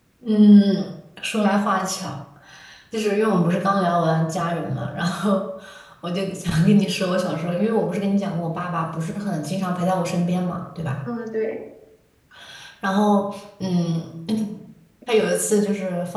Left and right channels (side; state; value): both; identical; correlation 1.00